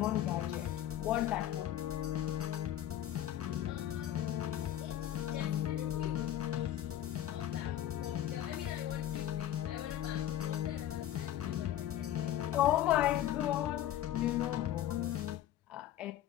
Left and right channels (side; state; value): right; quieter; 12.1 dB